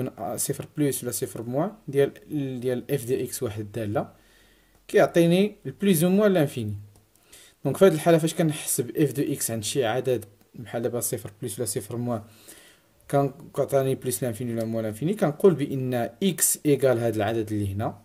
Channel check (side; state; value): both; identical; correlation 1.00